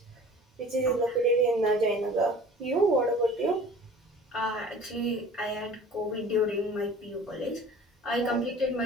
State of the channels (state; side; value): normal; both; correlation 0.45